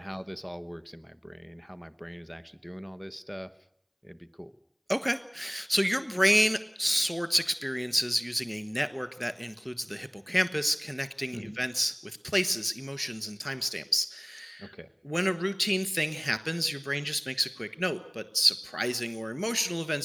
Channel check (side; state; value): both; identical; correlation 1.00